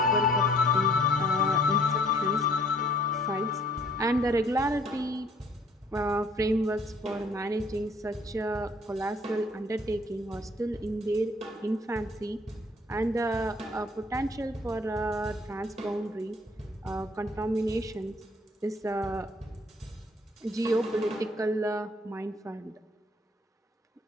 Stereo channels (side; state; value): both; normal; correlation 0.59